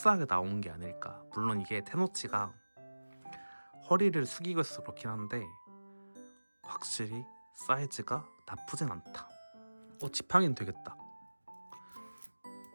나온 게 아닐까. 물론 이게 테노치가 허리를 숙이고 있어서 그렇긴 한데 확실히 사이즈가 나쁘진 않다. 지팡이는 되겠다.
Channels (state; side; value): inverted; both; correlation -1.00